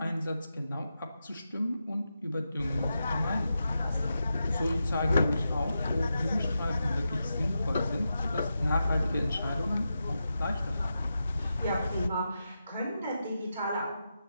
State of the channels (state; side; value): inverted; both; correlation -0.89